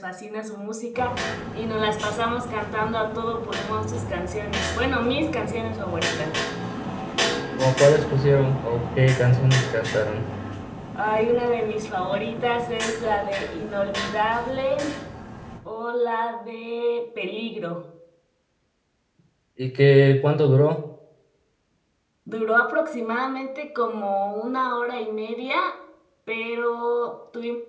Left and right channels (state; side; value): identical; both; correlation 1.00